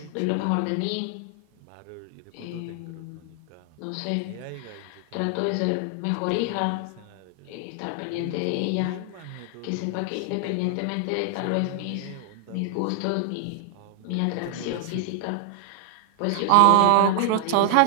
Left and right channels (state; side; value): different; both; correlation 0.00